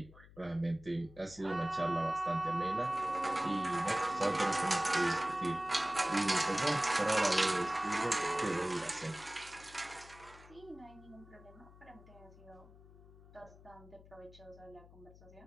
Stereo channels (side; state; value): left; noise; hum, 21 dB below the sound